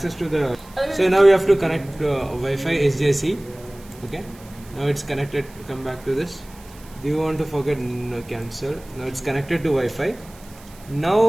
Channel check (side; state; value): right; noise; hiss, 23 dB below the sound